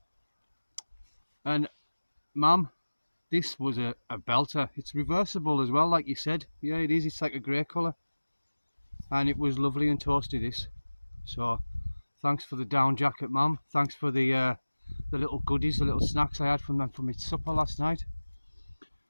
And Mum, this was a belter. It's reversible as well, like you said. Yeah, it is, it's like a grey colour. And it was lovely and toasty, this. So thanks for the down jacket, Mum. Thanks for the the little goodies, the little snacks I had from them for my supper last night.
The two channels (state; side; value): inverted; both; correlation -1.00